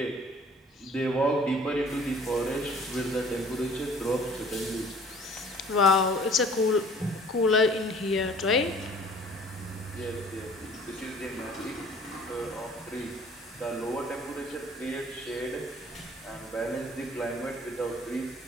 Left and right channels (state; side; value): normal; both; correlation 0.51